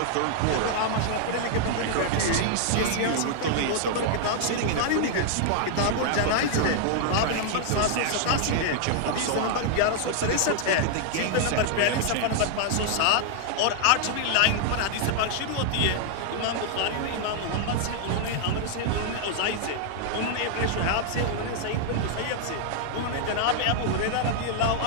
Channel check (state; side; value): different; both; correlation 0.00